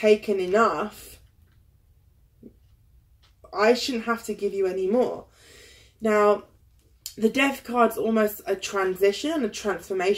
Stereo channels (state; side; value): identical; both; correlation 1.00